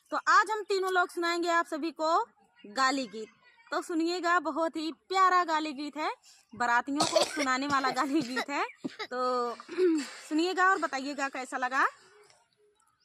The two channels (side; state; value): both; identical; correlation 1.00